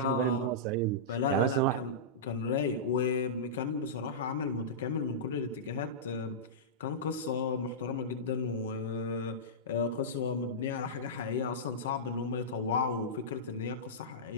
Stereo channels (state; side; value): normal; both; correlation -0.15